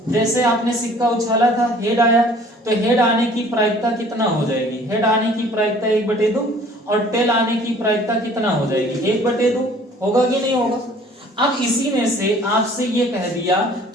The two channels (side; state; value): both; normal; correlation 0.53